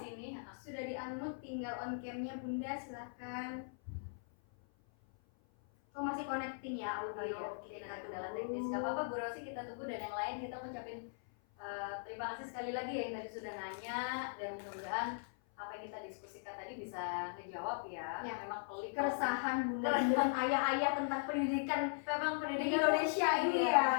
sini. Sudah di unmute, tinggal on camnya Bunda silakan. Oh masih connecting ya audio. Kita kendala teknis. Gak apa-apa Bu Rosi, kita tunggu, dan yang lain kita ucapin terima kasih sekali lagi ya yang tadi sudah nanya, dan mudah-mudahan apa yang kita diskusikan tadi bisa ngejawab ya. Memang pelik keresahan Bunda dengan ayah-ayah tentang pendidikan pendidikan Indonesia ini ya.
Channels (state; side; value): silent; right; 52 dB below the other